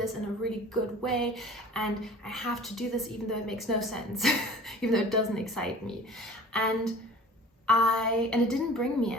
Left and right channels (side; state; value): both; normal; correlation 0.45